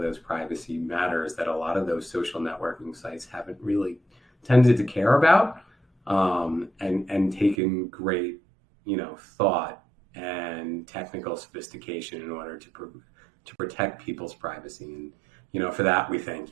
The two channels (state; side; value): drops out; left; at 7.6 s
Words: those privacy matters that a lot of those social networking sites haven't really tended to care about, and taken great, thought and technical sophistication in order to protect people's privacy. And, for that, we thank